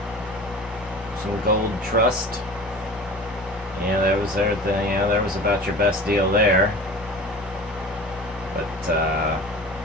Some gold trust. Yeah, that was yeah, that was about your best deal there. But,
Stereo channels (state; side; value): normal; both; correlation 0.38